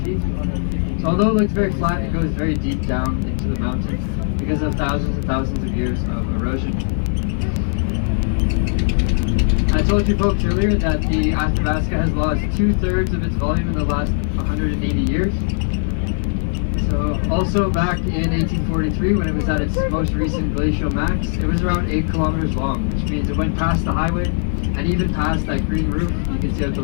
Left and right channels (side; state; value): right; silent; digital silence